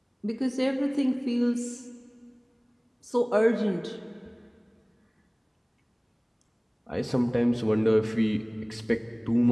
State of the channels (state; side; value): identical; both; correlation 1.00